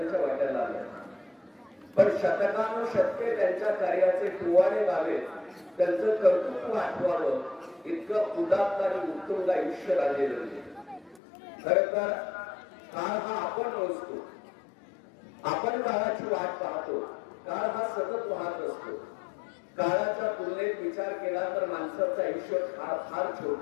वाट्याला आलं. पण शतकानुशतके त्यांच्या कार्याचे टुवाडे व्हावे, त्यांचं कर्तृत्व आठवावं इतकं उदात्त आणि उत्तुंग आयुष्य राजे जगले. खरं तर काळ हा आपण मोजतो, आपण काळाची वाट पाहतो. काळ हा सतत वाहत असतो. काळाच्या तुलनेत विचार केला तर माणसाचं आयुष्य फार छोट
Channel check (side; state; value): right; drops out; at 11.2 s